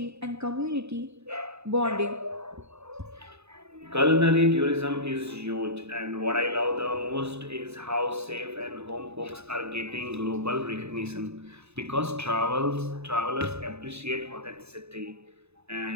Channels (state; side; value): late; left; 0.80 ms